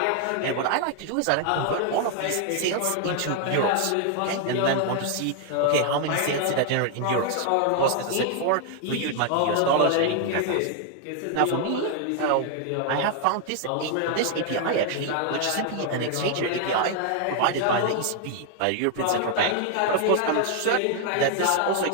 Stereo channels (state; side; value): different; both; correlation 0.00